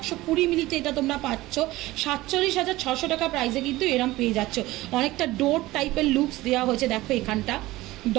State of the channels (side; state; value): left; quieter; 18.3 dB